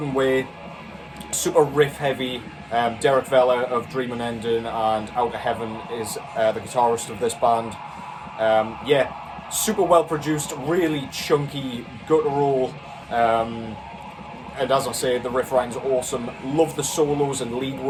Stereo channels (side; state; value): both; identical; correlation 1.00